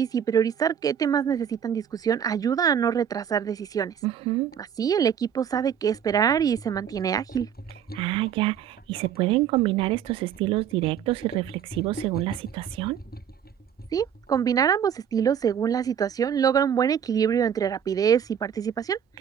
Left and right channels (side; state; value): left; quieter; 8.7 dB